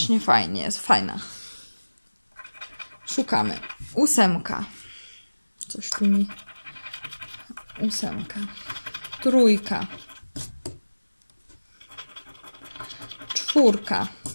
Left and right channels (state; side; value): inverted; both; correlation -1.00